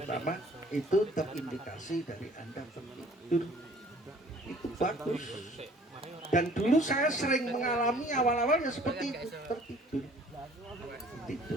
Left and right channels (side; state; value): both; normal; correlation 0.54